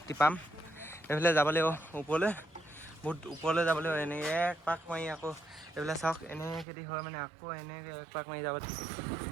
টিপাম। এইফালে যাব লাগিব ওপৰলৈ, বহুত ওপৰলৈ যাব লাগিব। এনেকৈ এক পাক মাৰি আকৌ এইফালে চাওক এনেকৈ যদি হয় মানে আকৌ এনেকৈ এক পাক মাৰি যাব।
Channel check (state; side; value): drops out; left; at 6.7 s